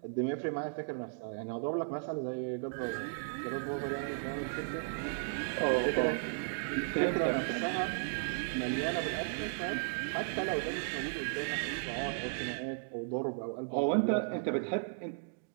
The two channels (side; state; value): left; silent; digital silence